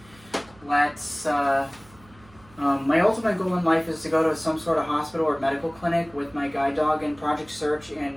My ultimate goal in life is to go to some sort of hospital or medical clinic with my guide dog and Project Search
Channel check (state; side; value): noise; right; hum, 26 dB below the sound